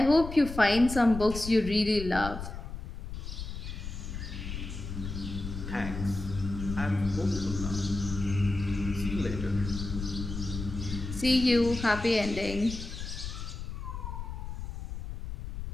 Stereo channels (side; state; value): left; noise; rumble, 7 dB below the sound